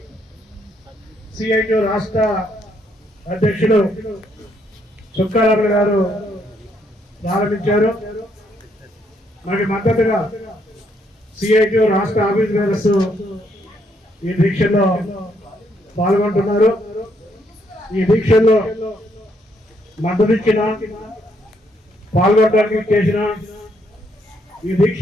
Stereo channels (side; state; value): both; normal; correlation 0.72